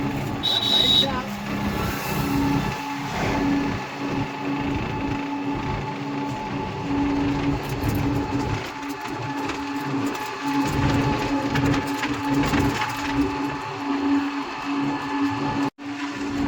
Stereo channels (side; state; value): both; identical; correlation 1.00